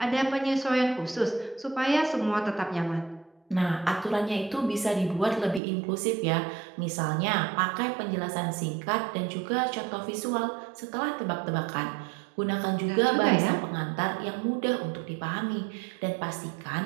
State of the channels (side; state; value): left; drops out; at 5.6 s